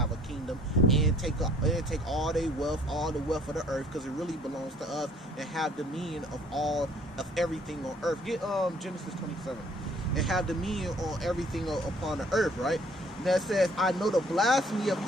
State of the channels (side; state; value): both; normal; correlation 0.58